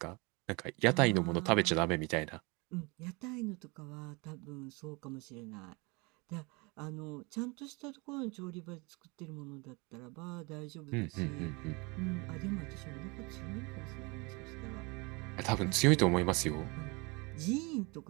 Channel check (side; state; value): left; quieter; 27.9 dB